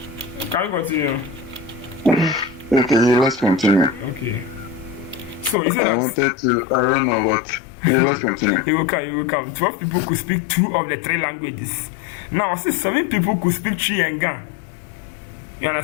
Can we continue? Okay, let's continue. Okay. So is it I wanted to. I don't know, but let's continue. You will come. 12 people could speak 2 of the 3 languages. Now, I say 7 people could speak Chi and Ga. You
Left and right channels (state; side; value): drops out; right; at 5.6 s